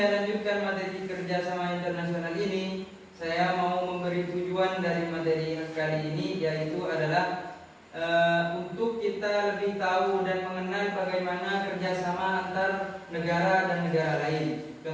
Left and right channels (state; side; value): identical; both; correlation 1.00